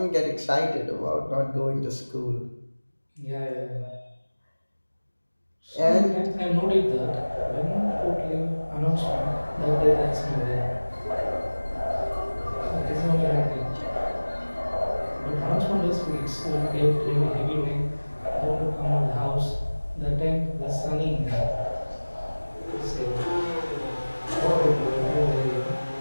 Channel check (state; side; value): inverted; both; correlation -1.00